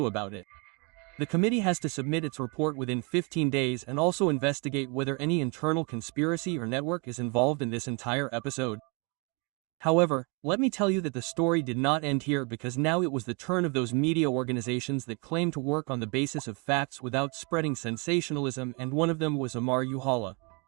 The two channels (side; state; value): left; quieter; 31.1 dB